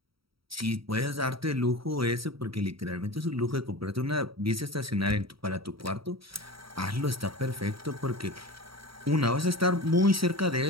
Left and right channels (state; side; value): late; left; 0.75 ms